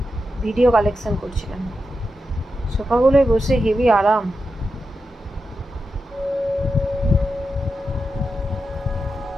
ভিডিও কালেকশন করছিলাম। সোফাগুলোয় বসে হেভি আরাম।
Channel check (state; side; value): normal; both; correlation 0.89